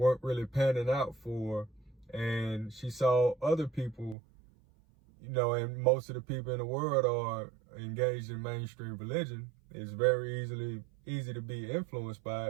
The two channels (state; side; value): drops out; left; at 4.2 s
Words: really panning out for. And she saw other people, and most of the people in the world are engaged in mainstream religion. It's very easy to be influenced